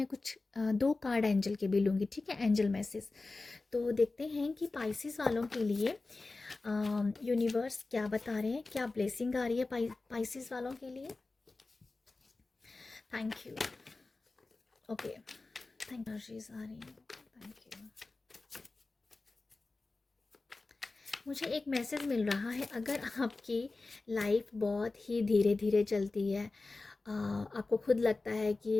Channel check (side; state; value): right; quieter; 3.5 dB